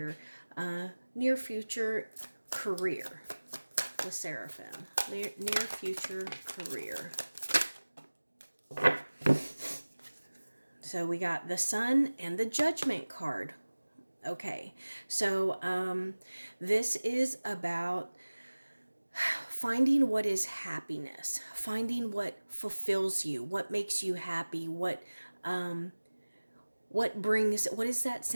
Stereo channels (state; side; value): inverted; both; correlation -1.00